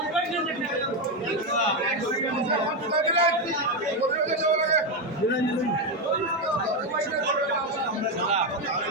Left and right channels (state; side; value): normal; both; correlation 0.08